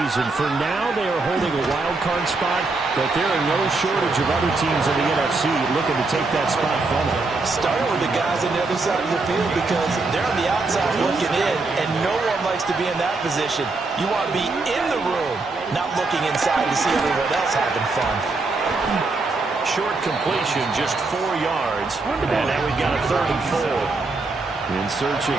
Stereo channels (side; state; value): left; quieter; 3.6 dB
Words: For now, they are holding a wild card spot, but there are no shortage of other teams in the NFC looking to take that spot from them. Starting with the guys on the other side of the field because they're on the outside looking in, and no one likes to be in that position. You want to be in the room, not looking inside to see everyone else having fun. Short completion, just 4 yards. And now we've got a 3rd and 4. In search of